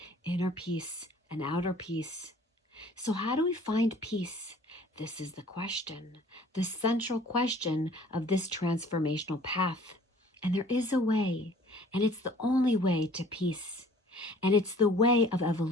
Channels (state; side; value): normal; both; correlation 0.52